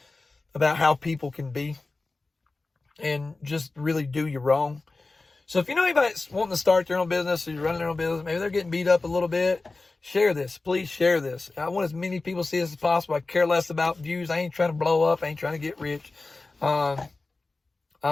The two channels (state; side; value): quieter; right; 3.5 dB